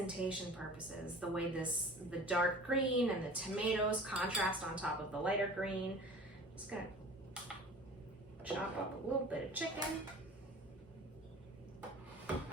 purposes, the way the dark green and the tomatoes contrast on top of the lighter green. Just gonna chop up a little bit of chicken.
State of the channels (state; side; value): normal; both; correlation 0.44